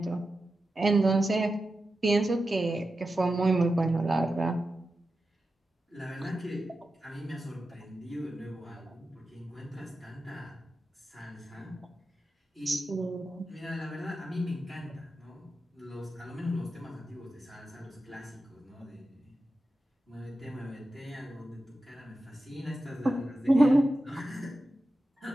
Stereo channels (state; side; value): normal; both; correlation 0.91